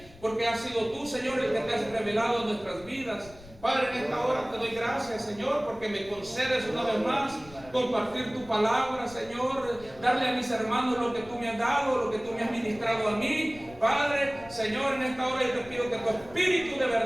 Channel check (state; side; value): noise; left; rumble, 21 dB below the sound